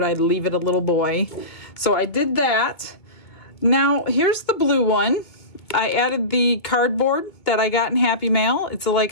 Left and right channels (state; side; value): late; right; 2.2 ms